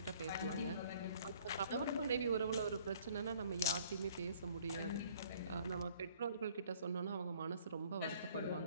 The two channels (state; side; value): inverted; both; correlation -0.56